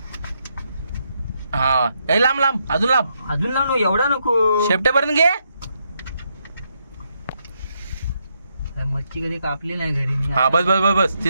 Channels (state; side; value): inverted; both; correlation -0.79